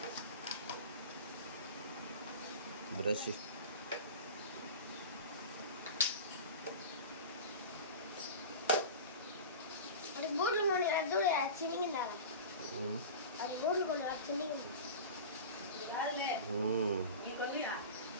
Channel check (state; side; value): inverted; both; correlation -0.31